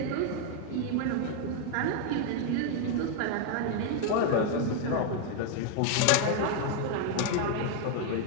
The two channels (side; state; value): both; different; correlation 0.00